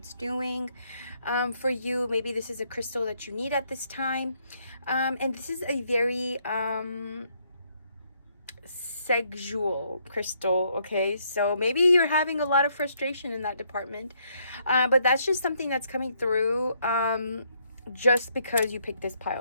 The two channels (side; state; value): both; inverted; correlation -0.71